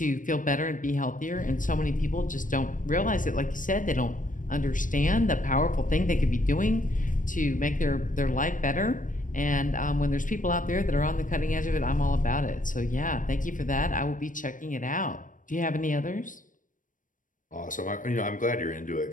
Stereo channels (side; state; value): right; late; 0.38 ms